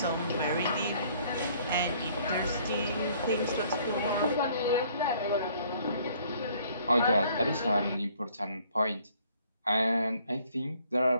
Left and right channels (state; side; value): inverted; both; correlation -0.60